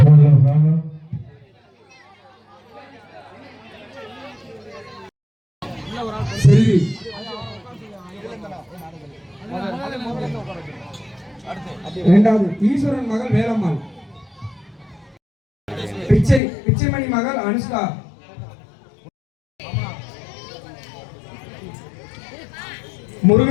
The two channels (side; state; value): right; drops out; at 16.4 s